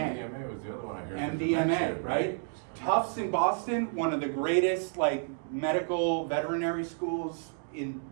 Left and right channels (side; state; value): left; silent; digital silence